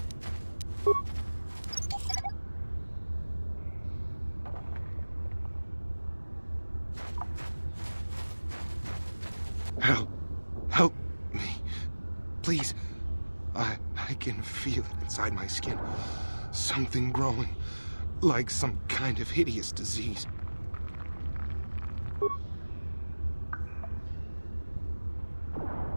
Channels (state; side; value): inverted; both; correlation -1.00